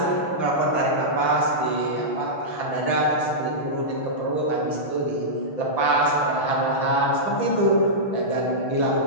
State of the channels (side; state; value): right; late; 5.7 ms